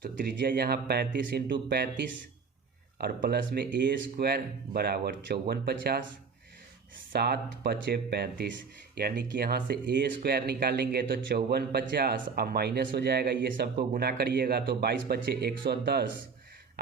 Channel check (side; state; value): left; quieter; 5.3 dB